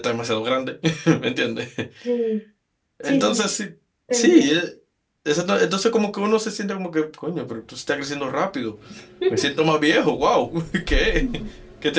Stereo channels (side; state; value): both; identical; correlation 1.00